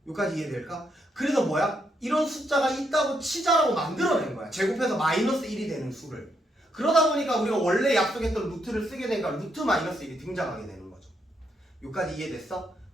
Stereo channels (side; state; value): both; normal; correlation 0.77